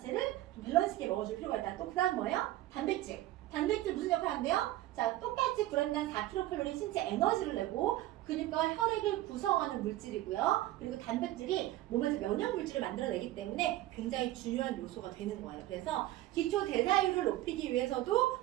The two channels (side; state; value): left; quieter; 15.5 dB